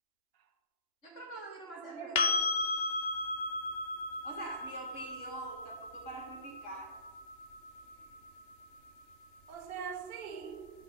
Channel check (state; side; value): late; right; 2.9 ms